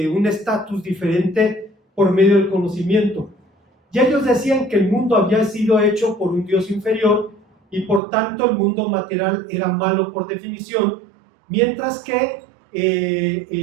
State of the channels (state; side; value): drops out; left; at 8.0 s